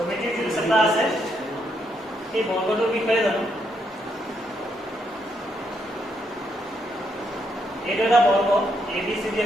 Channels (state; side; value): normal; both; correlation 0.77